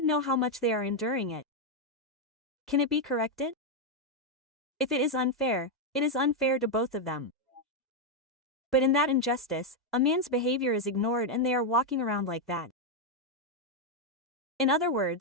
know how much they are enduring it. Can it be corrected? If it is unfair, it is unfair to both of them. But in that injustice, a man's behavior is ignored and they are walking around like that. In other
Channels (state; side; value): normal; both; correlation 0.02